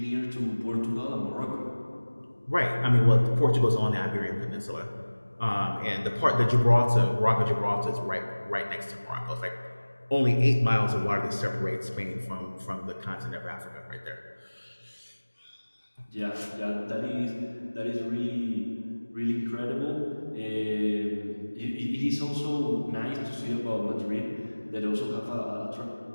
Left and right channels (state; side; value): inverted; both; correlation -1.00